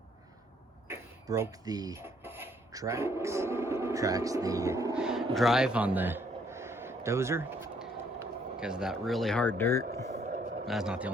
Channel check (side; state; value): both; normal; correlation 0.66